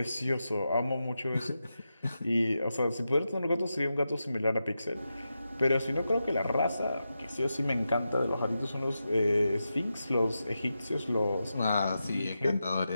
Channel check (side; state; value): both; inverted; correlation -0.89